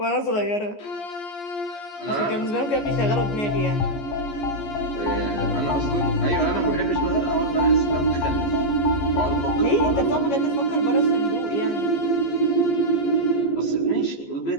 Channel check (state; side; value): late; right; 14 ms